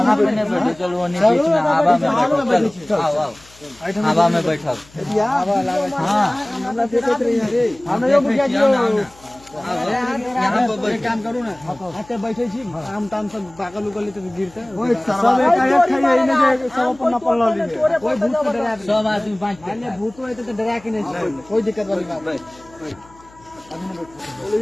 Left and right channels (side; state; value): left; noise; hum, 26 dB below the sound